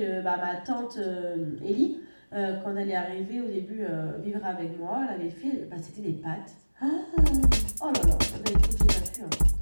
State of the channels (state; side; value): inverted; both; correlation -1.00